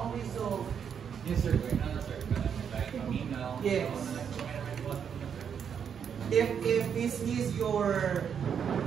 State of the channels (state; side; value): quieter; left; 7.6 dB